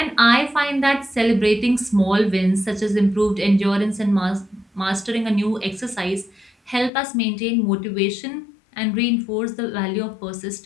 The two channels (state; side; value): drops out; right; at 6.9 s